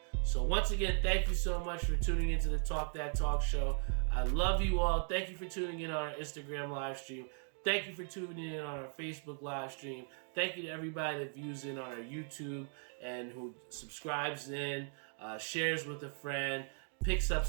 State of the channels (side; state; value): left; silent; 53 dB below the other